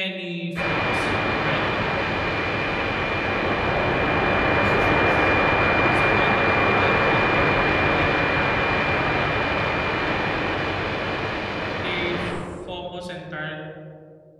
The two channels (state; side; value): identical; both; correlation 1.00